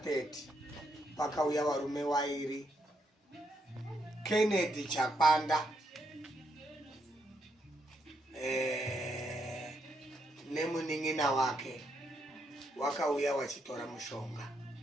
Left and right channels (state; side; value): normal; both; correlation 0.78